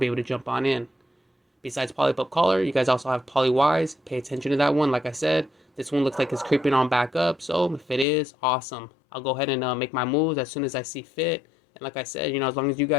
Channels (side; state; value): right; drops out; at 8.1 s